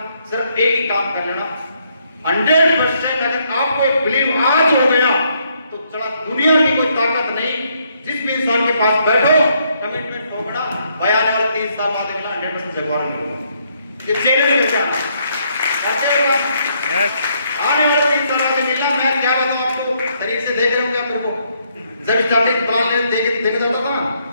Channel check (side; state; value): both; inverted; correlation -0.72